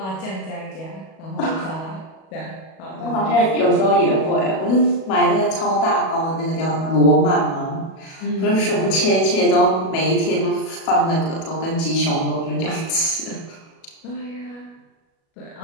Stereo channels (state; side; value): late; right; 37 ms